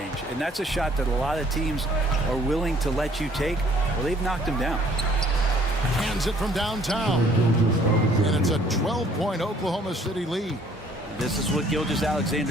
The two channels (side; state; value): both; normal; correlation 0.60